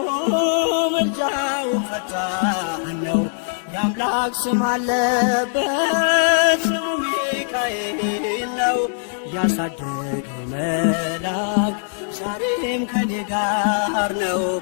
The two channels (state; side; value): silent; right; digital silence